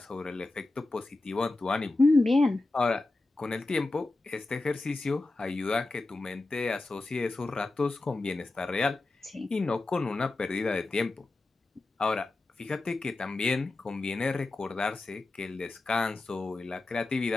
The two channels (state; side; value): quieter; right; 3.1 dB